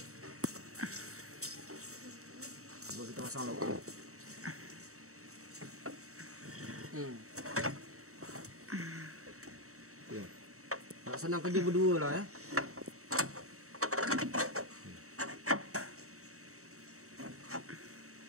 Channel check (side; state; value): left; late; 0.64 ms